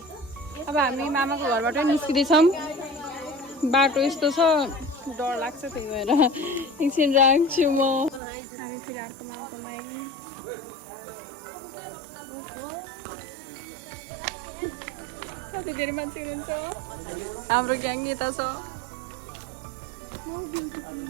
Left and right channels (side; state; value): left; drops out; at 8.2 s